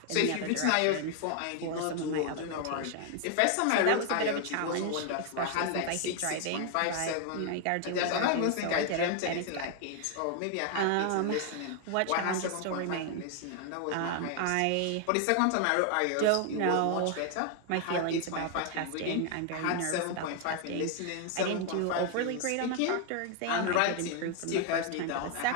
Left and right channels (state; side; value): different; both; correlation 0.00